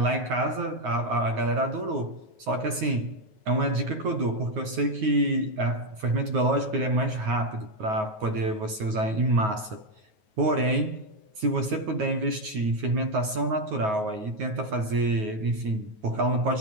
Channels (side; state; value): left; late; 9.4 ms